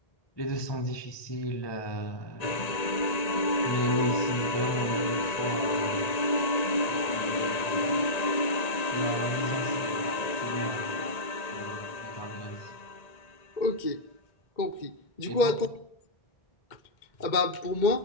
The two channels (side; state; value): right; late; 1.9 ms